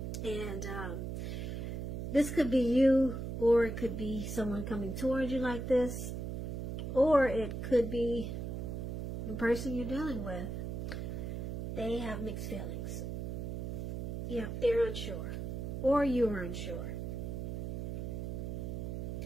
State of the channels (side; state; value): right; noise; hum, 4 dB below the sound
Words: And this could be you, or it could be someone coming towards you like this, or it could be the person you're dealing with. They have mixed feelings. Yeah, they're unsure, or you're unsure.